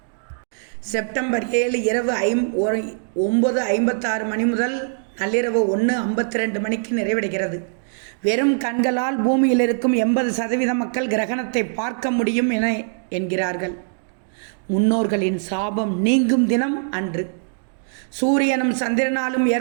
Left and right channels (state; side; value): silent; left; digital silence